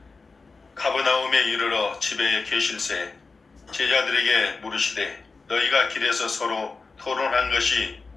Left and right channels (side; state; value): right; quieter; 4.2 dB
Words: 가버나움에 이르러 집에 계실새 제자들에게 물으시되 너희가 길에서 서로 토론한 것이